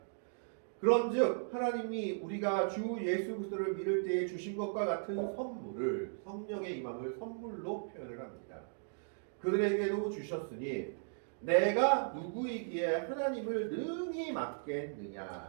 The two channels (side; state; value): left; silent; digital silence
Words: 그런즉 하나님이 우리가 주 예수 그리스도를 믿을 때에 주신 것과 같은 선물을 성령의 임함을 선물로 표현을 합니다. 그들에게도 주셨으니 내가 누구이기에 하나님을 능히